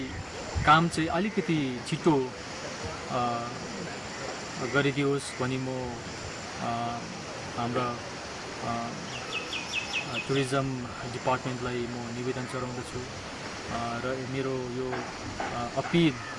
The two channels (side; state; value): both; identical; correlation 1.00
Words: काम चाहिँ अलिकति छिटो गरिदियोस् भनी म हाम्रा टुरिज्म डिपार्टमेन्टलाई म निवेदन चढाउँदछु र मेरो यो अपिल